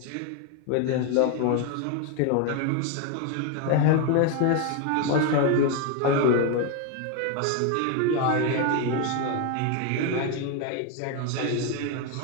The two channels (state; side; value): different; both; correlation 0.02